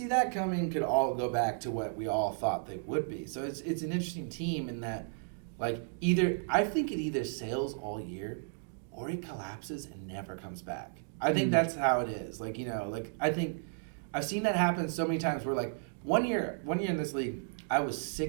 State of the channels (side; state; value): left; silent; digital silence